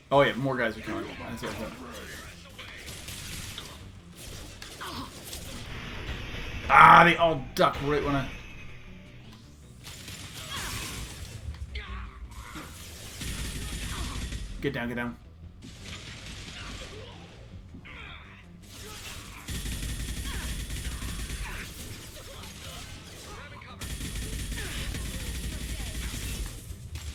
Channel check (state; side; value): identical; both; correlation 1.00